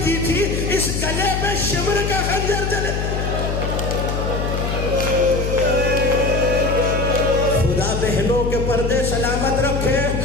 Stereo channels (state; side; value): noise; left; hum, 2 dB below the sound